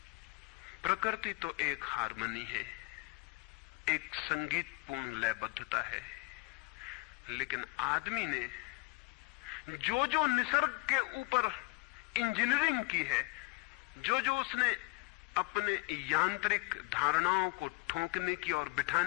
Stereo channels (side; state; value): right; quieter; 26.2 dB